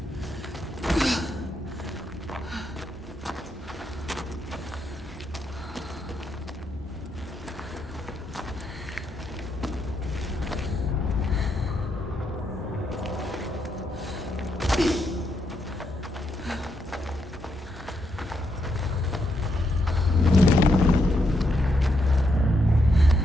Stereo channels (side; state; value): both; normal; correlation 0.79